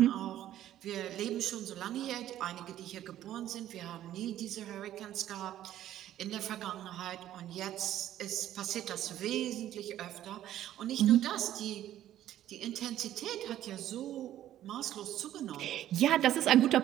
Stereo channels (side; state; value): left; quieter; 12.4 dB